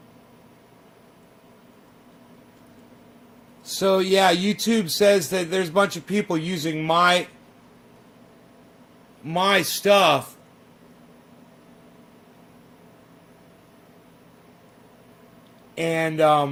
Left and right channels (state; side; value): identical; both; correlation 1.00